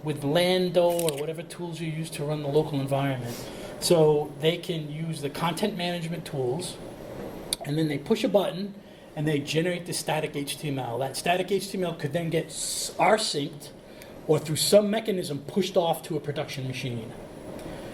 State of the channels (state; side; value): identical; both; correlation 1.00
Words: with Lando or whatever tools you use to run the local environment, so they can use the content management tools, and then they push a button and they generate the static HTML. That static HTML could then get rsynced or through some mechanism pushed off to a production machine.